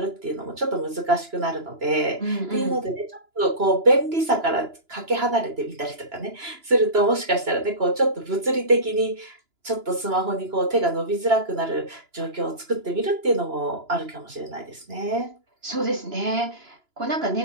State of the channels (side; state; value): left; late; 2.9 ms